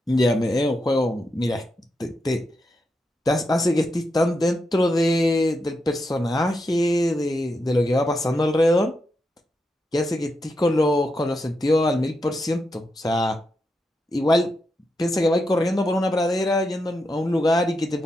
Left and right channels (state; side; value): normal; both; correlation 0.85